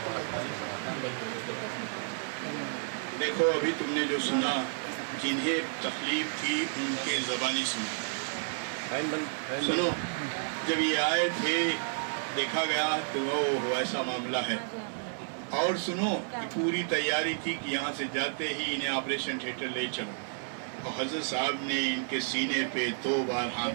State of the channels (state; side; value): silent; left; 57 dB below the other